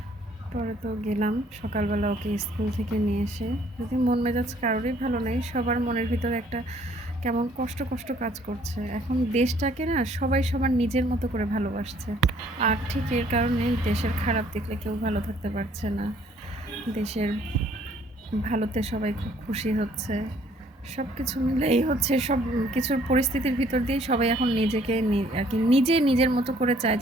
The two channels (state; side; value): normal; both; correlation 0.61